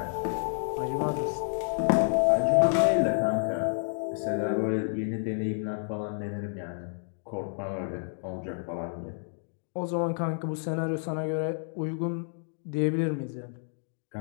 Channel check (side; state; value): right; silent; digital silence